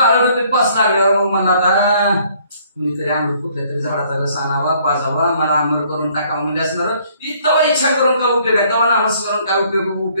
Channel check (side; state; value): both; inverted; correlation -0.62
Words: रुपये 5 लागल्यावर मग मला आता कुणीतरी आंबट कुठल्या तरी झाडाचा रस आणावा पाजावा, मला आंबट करून टाकावं म्हणजे असणार. तेव्हा इच्छा करून काय उपयोग आहे, तेव्हा नामस्मरण काय